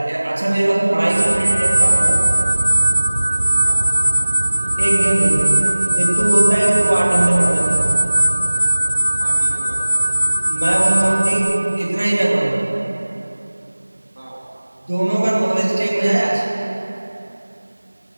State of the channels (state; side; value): inverted; both; correlation -1.00